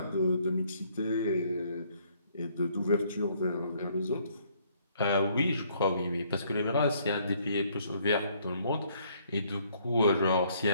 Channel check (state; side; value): inverted; both; correlation -0.65